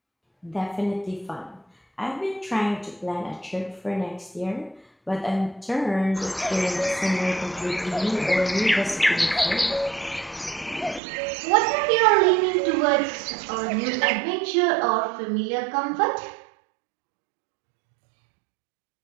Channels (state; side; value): drops out; left; at 11.0 s